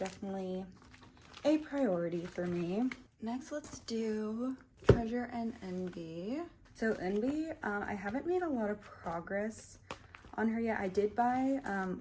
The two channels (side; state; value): both; identical; correlation 1.00